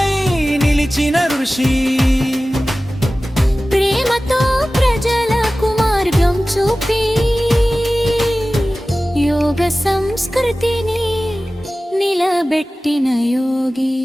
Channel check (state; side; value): normal; both; correlation 0.96